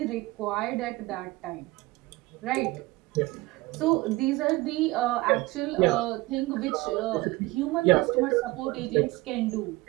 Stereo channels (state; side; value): quieter; left; 21.0 dB